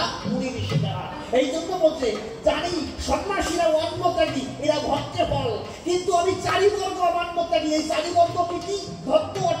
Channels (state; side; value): identical; both; correlation 1.00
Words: মুড়ি ঋষি তারা। এই জন্য বলছে জানি সন্ন্যাসীরা অন্ন ত্যাগী, এরা ভক্তের ফল। কিন্তু আমি চারিবর্গ অমান্য ত্যাগী। এই চারিবর্গ কি? ভক্ত